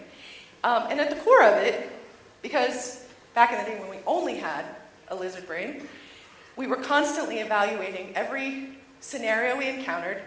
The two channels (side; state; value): both; identical; correlation 1.00